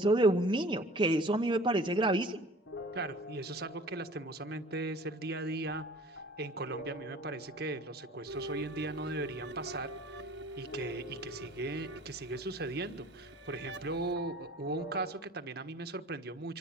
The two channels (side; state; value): both; normal; correlation 0.46